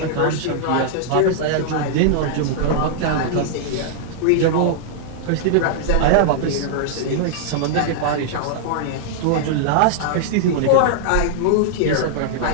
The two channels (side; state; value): both; different; correlation -0.01